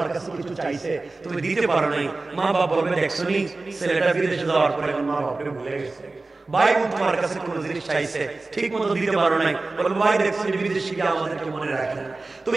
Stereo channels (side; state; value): left; quieter; 3.4 dB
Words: কাছে কিছু চাইছে, তুমি দিতে পারো নাই, মা বাপ বলবে দেখছনি ছেলেটা বিদেশে যাওয়ার পরে এখন মা বাপকে ভুলে গেছে। ভাই বোন তোমার কাছে কোনো জিনিস চাইছে, ঠিক মতো দিতে পারো নাই, বলবে ভাই দেখছনি বিদেশে গিয়ে আমাদেরকে মনে রাখে না।